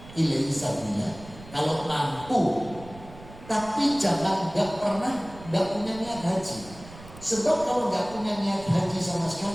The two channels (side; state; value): right; noise; rumble, 18 dB below the sound